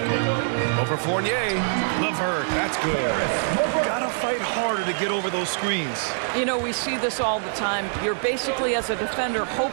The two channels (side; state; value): left; silent; 62 dB below the other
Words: Over Fournier. LeVert, that's good. Gotta fight harder to get over those screens. You know, we see this all the time. You're basically, as a defender,